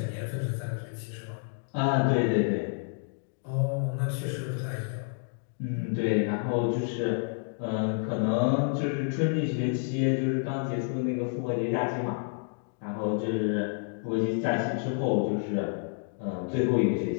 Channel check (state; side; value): silent; right; 58 dB below the other